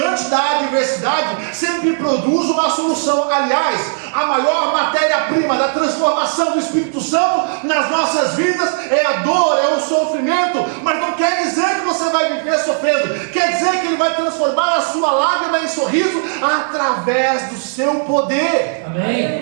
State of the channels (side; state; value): left; silent; digital silence